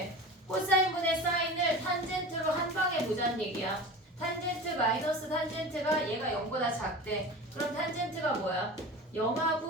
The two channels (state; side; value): normal; both; correlation 0.33